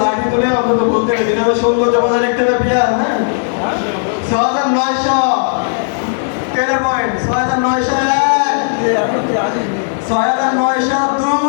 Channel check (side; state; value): right; silent; digital silence